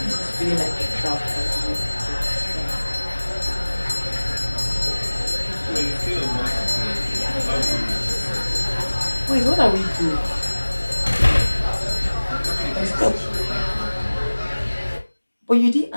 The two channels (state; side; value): inverted; both; correlation -1.00